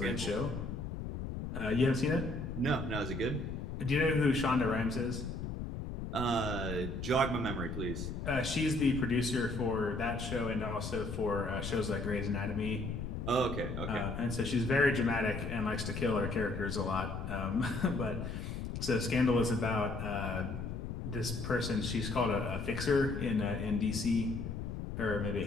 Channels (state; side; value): noise; left; rumble, 5 dB below the sound